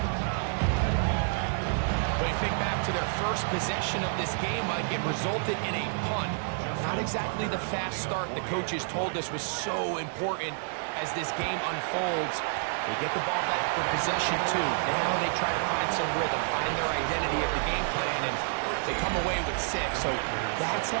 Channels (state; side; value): silent; left; digital silence